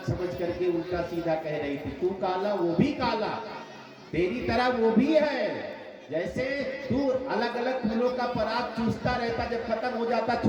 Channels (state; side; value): identical; both; correlation 1.00